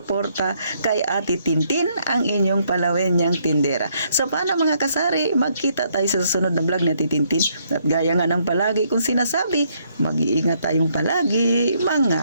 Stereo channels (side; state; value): both; inverted; correlation -0.71